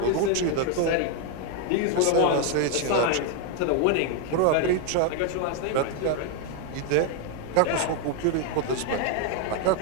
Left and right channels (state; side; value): different; both; correlation 0.00